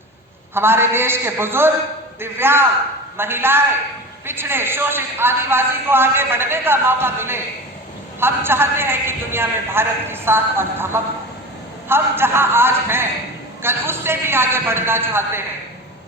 हमारे देश के बुजुर्ग, दिव्यांग, महिलाएं, पिछड़े, शोषित, आदिवासी को आगे बढ़ने का मौका मिले। हम चाहते हैं कि दुनिया में भारत की साख और धमक, हम जहां आज हैं कल उससे भी आगे बढ़ना चाहते हैं।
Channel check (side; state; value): both; normal; correlation 0.31